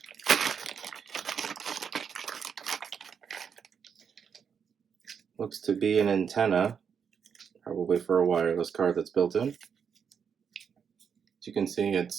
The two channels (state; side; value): quieter; left; 7.0 dB